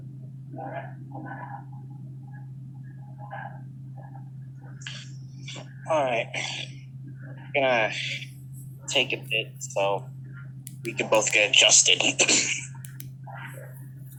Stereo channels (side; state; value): both; identical; correlation 1.00